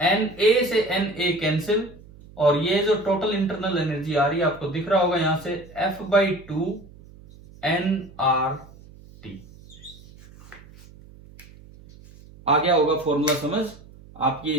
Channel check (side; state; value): right; noise; hum, 22 dB below the sound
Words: से Na कैंसिल, और ये जो टोटल इंटरनल एनर्जी आ रही है आपको दिख रहा होगा यहां से F/2 nRT। आ गया होगा फॉर्मूला समझ? आप ये